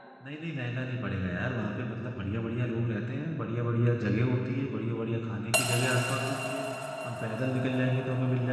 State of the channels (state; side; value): identical; both; correlation 1.00